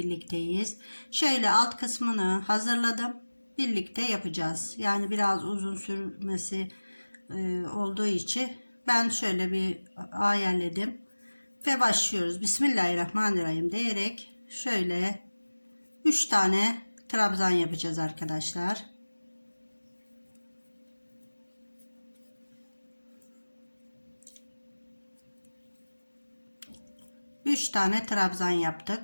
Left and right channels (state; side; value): inverted; both; correlation -1.00